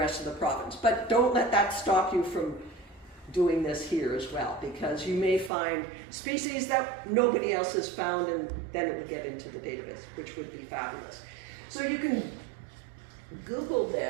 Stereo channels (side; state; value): left; drops out; at 5.5 s